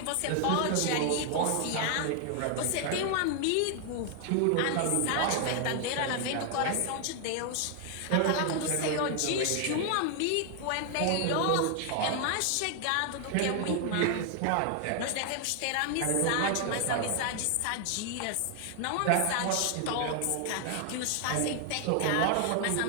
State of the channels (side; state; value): both; different; correlation 0.00